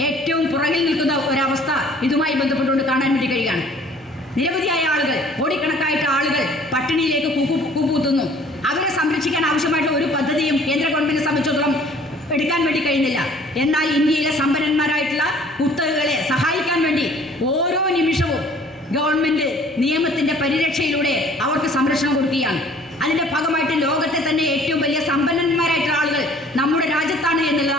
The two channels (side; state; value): both; normal; correlation 0.53